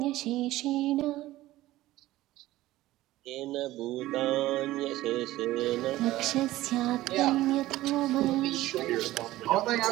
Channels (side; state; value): left; quieter; 16.3 dB